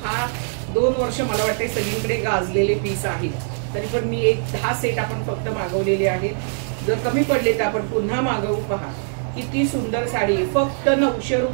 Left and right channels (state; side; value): silent; left; digital silence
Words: हा 2 वर्ष मला वाटते सगळीकडे गाजलेले पीस आहेत। तरी पण मी एक 10 सेट आपण फक्त मागवलेले आहेत। जर कमी पडले तर आपण पुन्हा मागवू। पहा किती सुंदर साडी आहे। फक्त 900